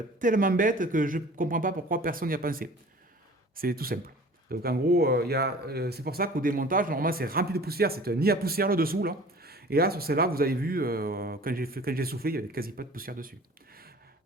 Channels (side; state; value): both; normal; correlation 0.45